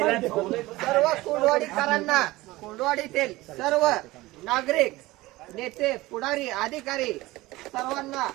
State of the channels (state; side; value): quieter; left; 19.3 dB